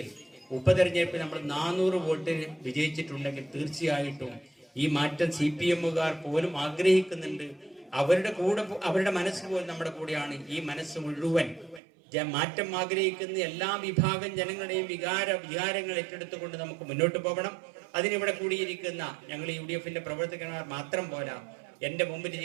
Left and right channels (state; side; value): drops out; left; at 11.8 s